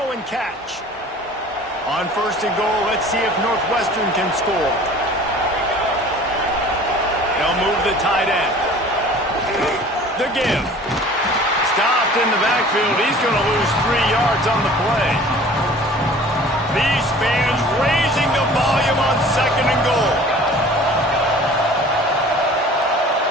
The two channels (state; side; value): normal; both; correlation 0.46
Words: and catch. On first and goal, let's see if Northwestern can score. They'll move the tight end. The give. Stopped in the backfield. He's going to lose 3 yards on the play. These fans raising the volume on second and goal.